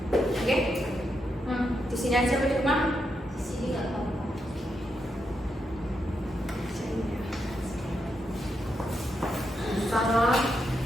sini aja apa di rumah? Di sini nggak apa-apa. Sama.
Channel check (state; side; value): normal; both; correlation 0.83